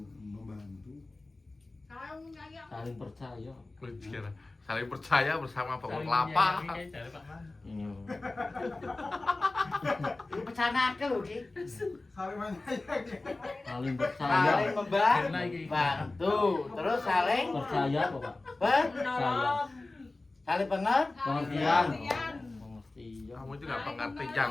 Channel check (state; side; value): quieter; right; 3.1 dB